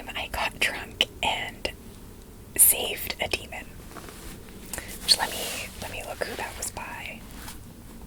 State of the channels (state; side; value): identical; both; correlation 1.00